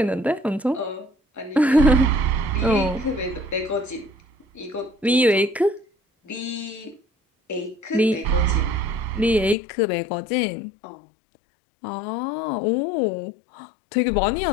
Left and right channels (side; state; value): right; drops out; at 9.6 s